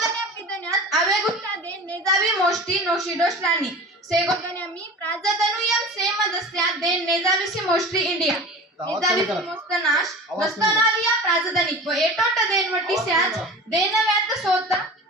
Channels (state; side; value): normal; both; correlation 0.36